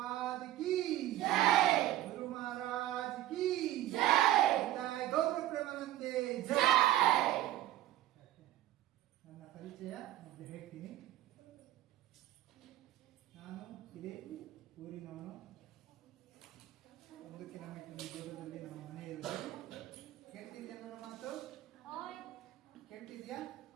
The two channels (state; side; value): quieter; left; 14.2 dB